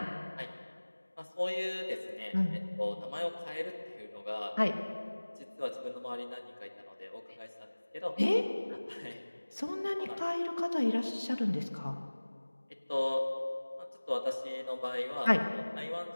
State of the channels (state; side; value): inverted; both; correlation -1.00